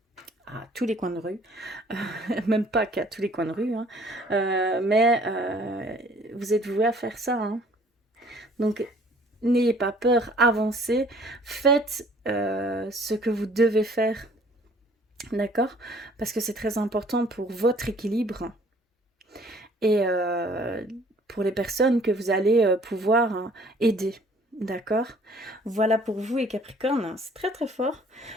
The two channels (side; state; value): both; normal; correlation 0.56